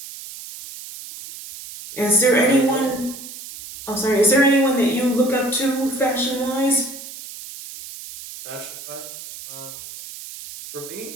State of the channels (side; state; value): right; noise; hiss, 13 dB below the sound